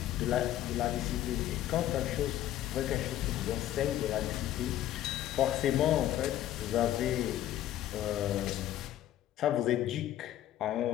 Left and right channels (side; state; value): right; quieter; 12.7 dB